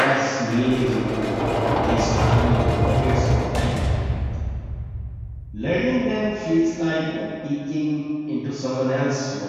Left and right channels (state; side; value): identical; both; correlation 1.00